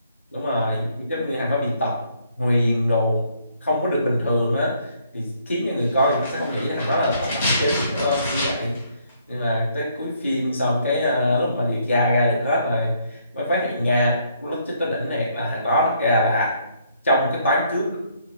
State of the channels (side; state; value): both; inverted; correlation -0.69